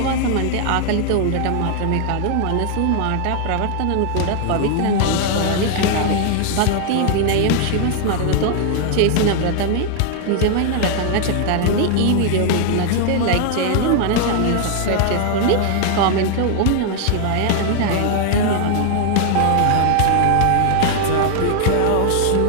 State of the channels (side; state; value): both; different; correlation 0.00